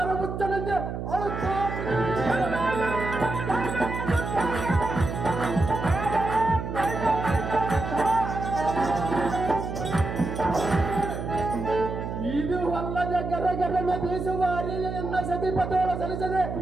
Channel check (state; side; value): noise; right; hum, 5 dB below the sound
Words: ಮುಚ್ಚನಂತೆ ಅಳುತ್ತಾ ಇದು ಅಲ್ಲದೆ ಗರಗರನ ಬೀಸುವ ಅರಿಯನ್ನ ಸತಿಪತೋಳ ಸಲ್ಲಿಸದೆ